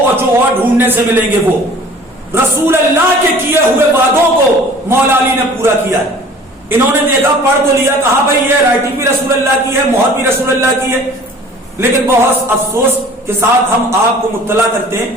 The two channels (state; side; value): normal; both; correlation 0.48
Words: جو اور ڈھونڈنے سے ملیں گے وہ, رسول اللہ کے کیے ہوئے وعدوں کو مولا علی نے پورا کیا ہے. انہوں نے دیکھا, پڑھ تو لیا, کہا بھائی یہ رائٹنگ بھی رسول اللہ کی ہے, مہر بھی رسول اللہ کی ہے. لیکن بہت افسوس کے ساتھ ہم آپ کو مطلع کرتے ہیں